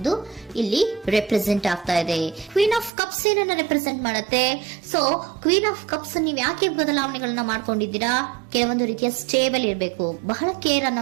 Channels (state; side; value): drops out; left; at 2.9 s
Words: ಇಲ್ಲಿ ರೆಪ್ರೆಸೆಂಟ್ ಆಗ್ತಾ ಇದೆ. ಕ್ವೀನ್ ಆಫ್ ಕಪ್ಸ್ ಏನನ್ನ ರೆಪ್ರೆಸೆಂಟ್ ಮಾಡುತ್ತೆ? ಸೊ ಕ್ವೀನ್ ಆಫ್ ಕಪ್ಸ್ ನೀವು ಯಾಕೆ ಬದಲಾವಣೆಗಳನ್ನ ಮಾಡ್ಕೊಂಡಿದ್ದೀರಾ? ಕೆಲವೊಂದು ರೀತಿಯ ಸ್ಟೇಬಲ್ ಇರಬೇಕು, ಬಹಳ ಕೇರ್ ಅನ್ನ